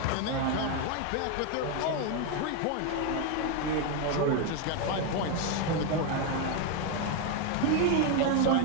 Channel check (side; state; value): both; different; correlation 0.01